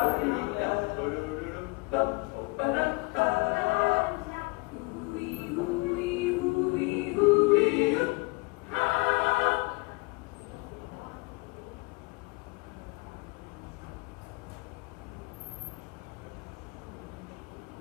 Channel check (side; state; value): right; quieter; 27.8 dB